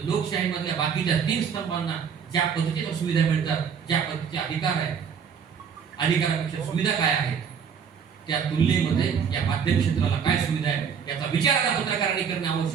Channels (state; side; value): quieter; left; 7.0 dB